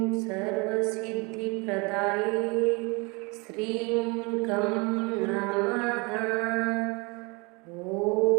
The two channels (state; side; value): quieter; left; 28.5 dB